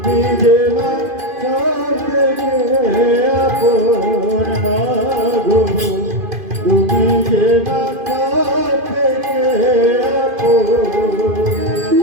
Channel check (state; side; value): late; left; 2.5 ms